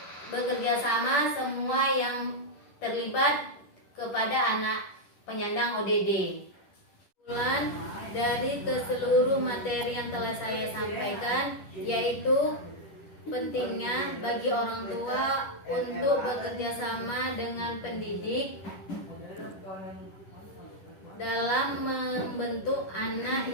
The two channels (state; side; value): late; right; 10 ms